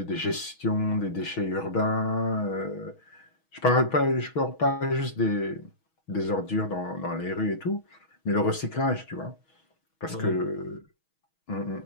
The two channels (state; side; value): late; right; 6.3 ms